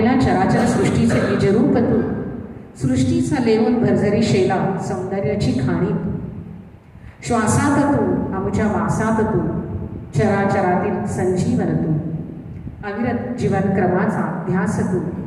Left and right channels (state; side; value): identical; both; correlation 1.00